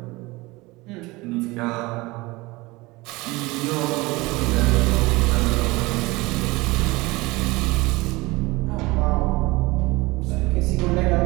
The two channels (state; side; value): quieter; left; 22.3 dB